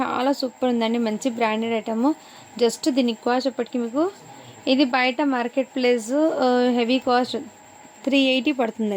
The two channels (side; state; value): both; identical; correlation 1.00